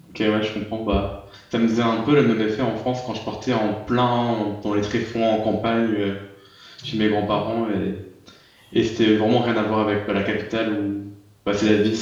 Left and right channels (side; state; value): both; identical; correlation 1.00